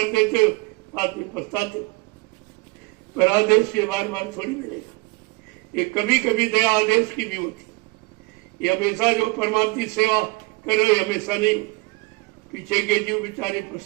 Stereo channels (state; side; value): quieter; left; 25.2 dB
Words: देते हो, बाद में पछताते हो। पर आदेश ये बार बार थोड़ी मिलेगा, ये कभी कभी दया आदेश की भी होती। ये हमेशा जो परमात्मा की सेवा कर रहे हमेशा नहीं होती। पीछे के जीव बेचारे